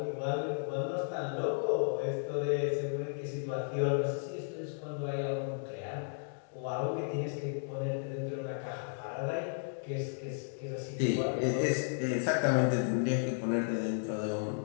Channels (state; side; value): silent; right; digital silence